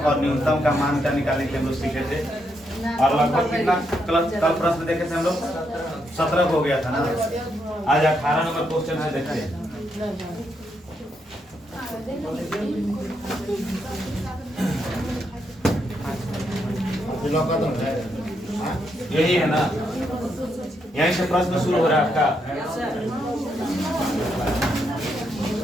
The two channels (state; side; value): normal; both; correlation 0.79